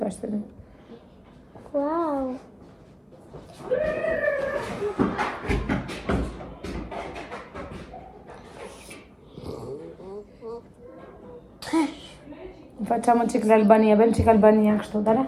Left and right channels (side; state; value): both; identical; correlation 1.00